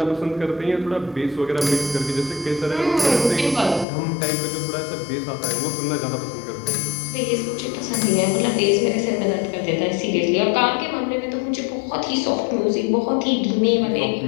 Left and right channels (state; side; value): drops out; right; at 3.9 s